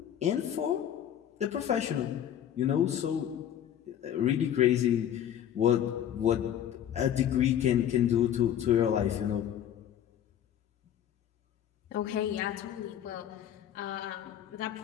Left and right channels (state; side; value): quieter; right; 10.3 dB